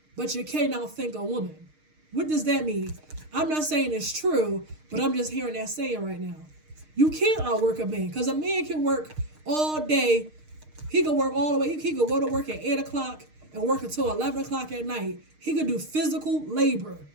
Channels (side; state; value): left; late; 6.5 ms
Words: but you can't outthink a woman. What does that mean? I'm not saying it's true, but I'm just hearing that saying right now. You can't outwork a man because a man can work all day. He can work all the way. He could go to work at 8 o'clock and work until 11 o'clock at night. He could do physical labor.